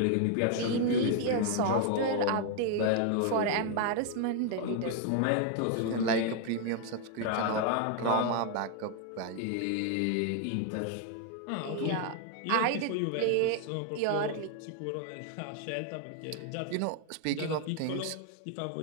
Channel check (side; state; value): both; different; correlation 0.00